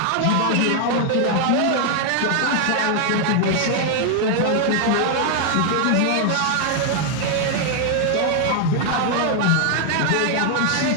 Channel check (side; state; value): both; different; correlation 0.00